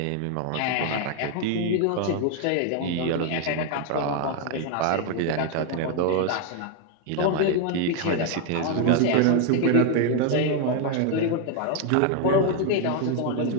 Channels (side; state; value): both; different; correlation 0.01